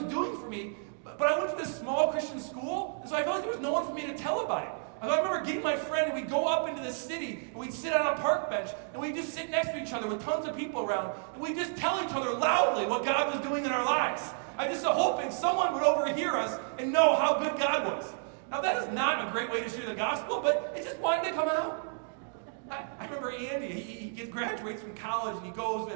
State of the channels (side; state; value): left; silent; 57 dB below the other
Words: doing for me. But I went to this small Christian school, and so I felt like there was no one for me to tell about it. I remember getting my friend, and we'd go up into the city, and we'd sit on a park bench, and we'd just sit next to each other with tons of people around, and we'd just tell each other loudly what God was doing in our lives. I just hoping someone would overhear us and know how good God was. Now, that is not a great way to share the gospel, but it just wanted to come out. I remember Andy, he graduates from college, and he goes to